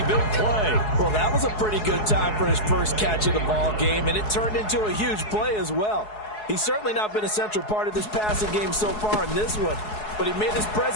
big play. Well, that was a pretty good time for his first catch of the ball game, and it turned into a huge play as well. He's certainly not been a central part of this passing game so far in this one, but he made his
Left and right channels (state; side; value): late; right; 4.7 ms